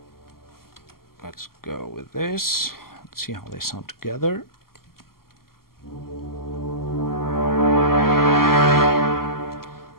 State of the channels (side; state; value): right; late; 0.92 ms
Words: go with this. Let's see how they sound together.